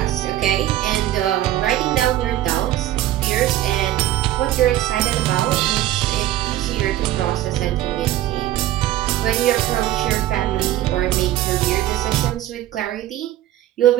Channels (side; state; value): left; quieter; 13.8 dB